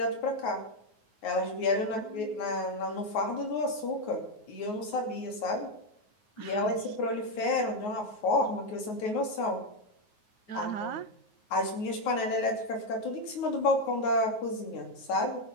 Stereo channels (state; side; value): late; right; 9.5 ms